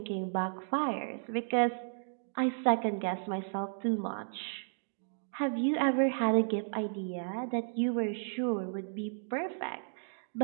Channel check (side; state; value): left; silent; digital silence